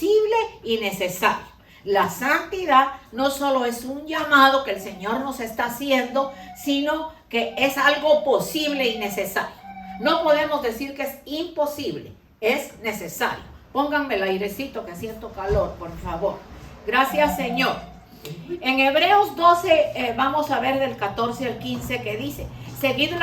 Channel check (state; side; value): identical; both; correlation 1.00